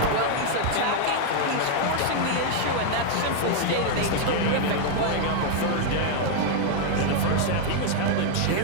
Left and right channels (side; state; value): both; different; correlation 0.00